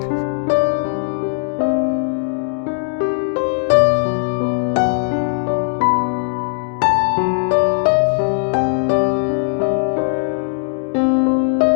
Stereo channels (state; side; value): silent; right; digital silence